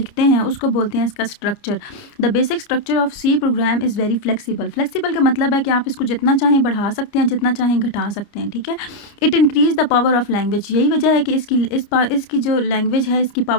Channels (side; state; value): right; late; 29 ms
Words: हैं उसको बोलते हैं इसका structure. The basic structure of C program is very flexible. Flexible का मतलब है कि आप इसको जितना चाहें बढ़ा सकते हैं, जितना चाहें घटा सकते हैं। ठीक है, it increase the power of language. यही वजह है कि इसकी जो लैंग्वेज है इसकी